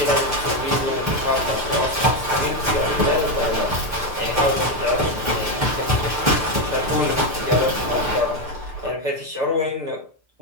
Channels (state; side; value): late; left; 6.7 ms